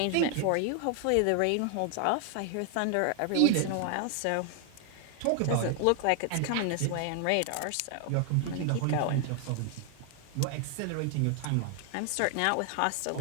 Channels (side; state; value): both; different; correlation 0.00